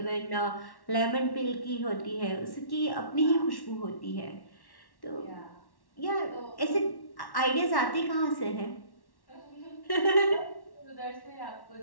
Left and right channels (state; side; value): late; right; 1.1 ms